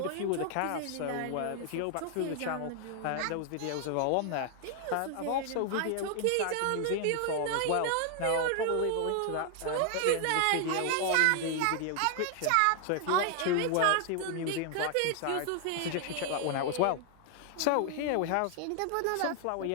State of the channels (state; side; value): different; both; correlation 0.00